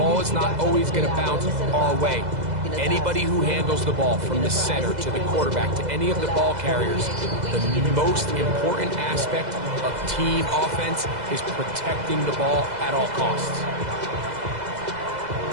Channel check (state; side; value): late; left; 2.0 ms